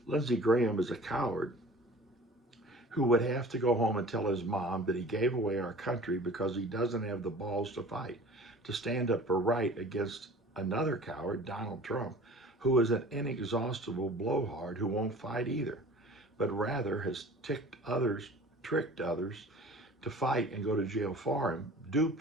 Lindsey Graham is a coward who would have to go home and tell his mom that he gave away our country because he doesn't have the balls to fight, to stand up for right against another coward, Donald Trump, who is an inexhaustible blowhard who won't fight either, but rather has tricked others to fight and go to jail for him,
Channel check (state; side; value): normal; both; correlation 0.44